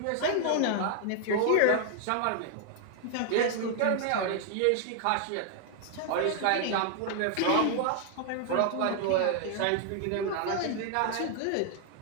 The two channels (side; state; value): both; different; correlation 0.00